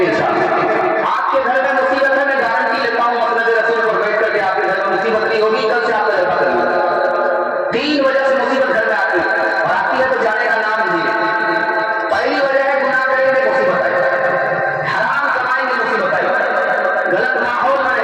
इंशाअल्लाह। आपके घर में मुसीबत है, मैं गारंटी लेता हूँ मसनद रसूल पर बैठ करके आपके घर में मुसीबत नहीं होगी। कल से आपका जलसा करेंगे। 3 वजह से मुसीबत घर में आती है, और आती है तो जाने का नाम नहीं है। पहली वजह है गुनाह करेंगे मुसीबत आएगी, हराम कमाएंगे मुसीबत आएगी, गलत माहौल में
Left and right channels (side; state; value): both; identical; correlation 1.00